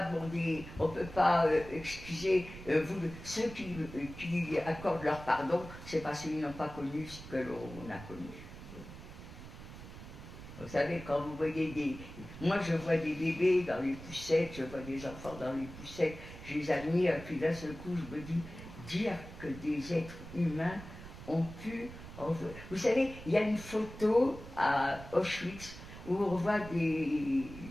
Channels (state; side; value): noise; right; rumble, 14 dB below the sound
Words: demander, on ne peut pas excuser ceux qui accordent leur pardon, c'est parce qu'ils n'ont pas connu ce que l'on a connu. Vous savez, quand vous voyez des... Moi, je vois des bébés dans les poussettes, je vois des enfants dans les poussettes, je les admire, et puis d'un seul coup, je me dis, dire que des êtres humains ont pu... Vous savez, il y a une photo à Auschwitz où on voit